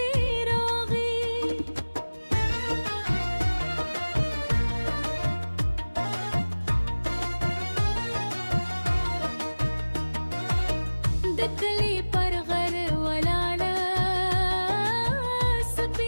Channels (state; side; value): inverted; both; correlation -1.00